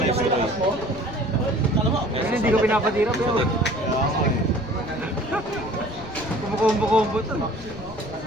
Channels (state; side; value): noise; left; rumble, 16 dB below the sound